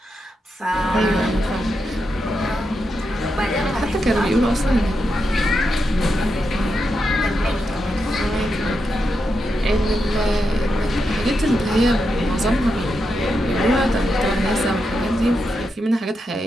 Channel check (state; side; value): normal; both; correlation 0.85